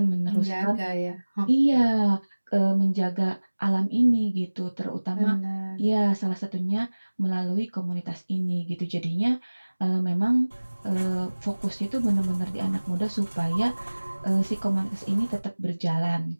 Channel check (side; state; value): both; inverted; correlation -1.00